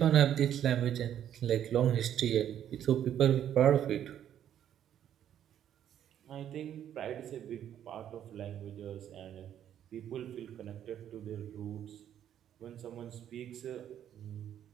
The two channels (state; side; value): quieter; left; 10.3 dB